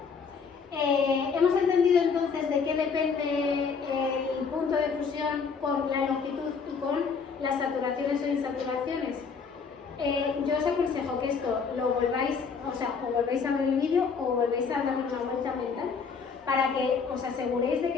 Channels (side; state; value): right; quieter; 5.6 dB